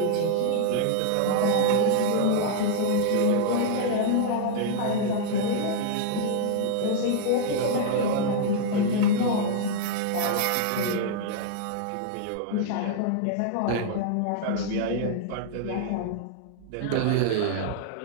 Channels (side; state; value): both; different; correlation -0.01